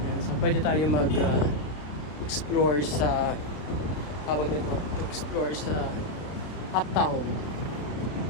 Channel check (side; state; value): right; late; 33 ms